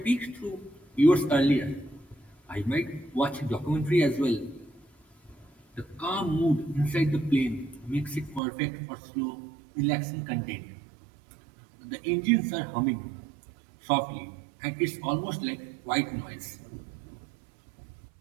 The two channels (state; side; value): drops out; left; at 8.4 s